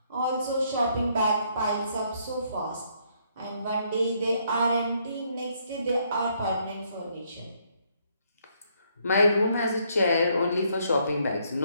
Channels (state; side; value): inverted; both; correlation -0.71